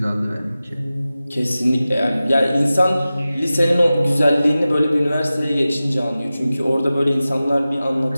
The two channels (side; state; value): both; inverted; correlation -0.95